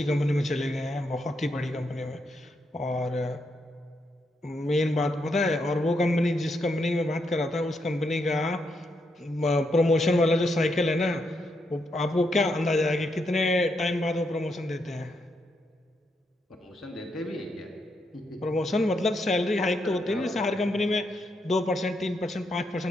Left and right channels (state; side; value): normal; both; correlation 0.80